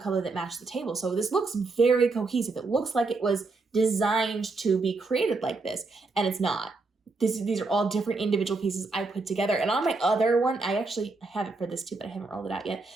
that matched the table. So this looks very cohesive. It looks like it was designed to be created like this, and it's not. These are all different individual pieces I put together. And on my other one, I actually have it for this too, but I haven't rolled it out yet.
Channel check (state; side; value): quieter; left; 3.7 dB